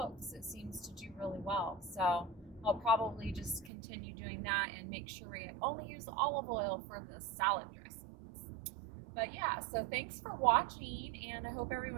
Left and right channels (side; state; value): left; drops out; at 3.7 s